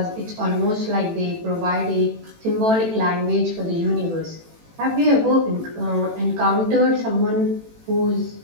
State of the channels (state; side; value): late; left; 18 ms